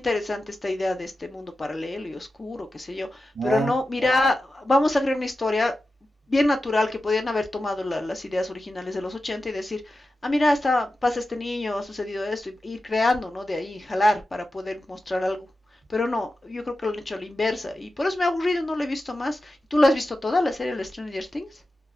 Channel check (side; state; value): both; normal; correlation 0.93